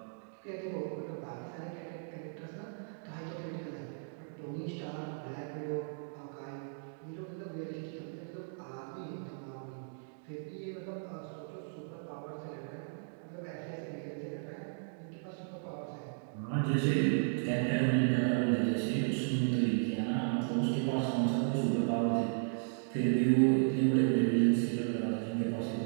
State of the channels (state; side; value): silent; left; digital silence